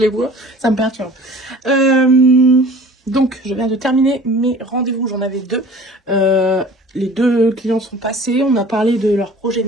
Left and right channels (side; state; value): both; normal; correlation 0.46